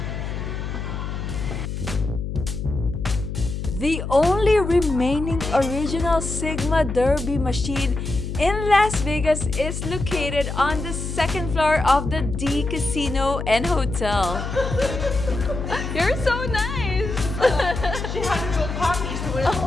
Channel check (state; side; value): noise; left; hum, 5 dB below the sound